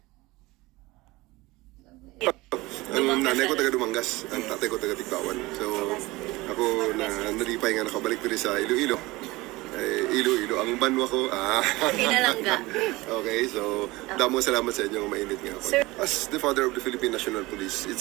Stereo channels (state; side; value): quieter; left; 21.0 dB